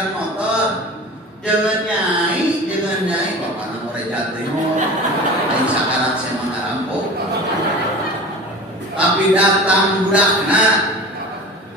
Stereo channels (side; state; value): both; normal; correlation 0.36